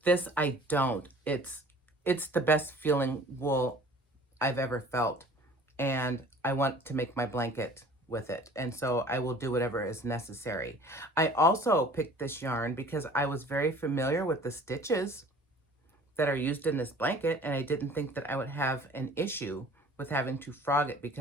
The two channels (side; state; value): both; normal; correlation 0.48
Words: this I don't. It's the best feeling wool I've ever felt, and I want to make my blanket with it, and so I will do whatever is necessary. I also picked this yarn because I was very familiar with the stitches that are used in this blanket, and I didn't think that I would have an issue with having to frog it,